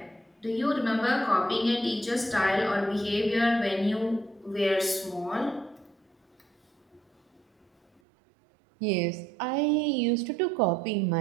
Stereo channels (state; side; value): drops out; left; at 8.0 s